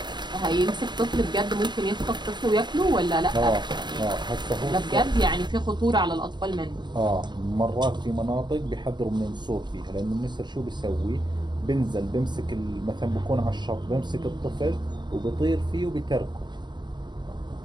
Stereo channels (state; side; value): late; left; 0.21 ms